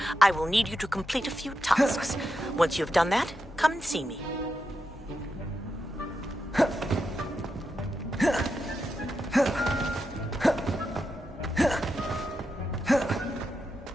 I will need you to complete a few tasks. Once you've done that, come and see me.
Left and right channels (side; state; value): both; normal; correlation 0.87